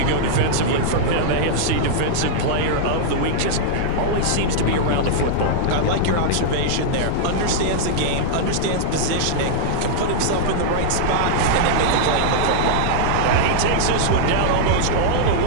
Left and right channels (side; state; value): both; different; correlation -0.01